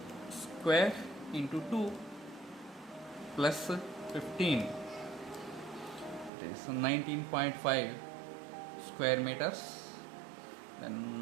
square into 2 plus 15. It is 19.5 square meters.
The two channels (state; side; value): drops out; left; at 6.3 s